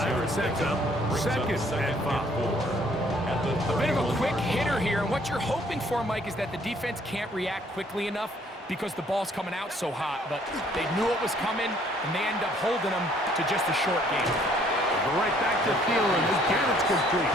and sets up second and 5. A bit of a quick hitter here, and what you're hoping for, Mike, is that the defense can't react quickly enough because the ball's coming out so hot, but they knew it was coming, and they end up holding them to just a short game. Right back to Thielen. Again, it's complete.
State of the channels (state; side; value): normal; both; correlation 0.62